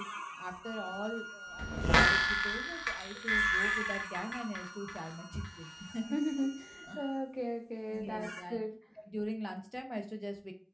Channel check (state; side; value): identical; both; correlation 1.00